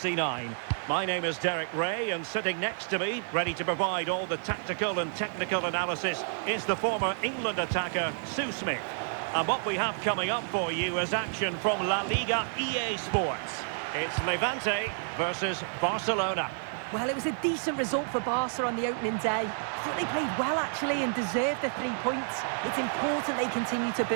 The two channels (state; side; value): silent; left; 58 dB below the other